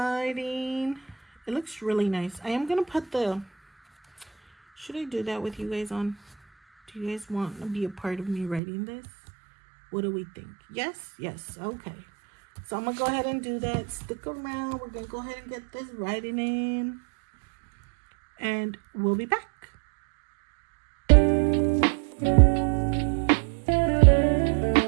It looks really nice. I am gonna put should I do that with you guys on? Do you guys want to be a part of me writing this? What do we think? Yes? Yes. Okay. So I'm going to go ahead and do that. Stick around. We're going to go ahead and get this writing in. And we'll be back.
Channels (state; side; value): drops out; left; at 8.6 s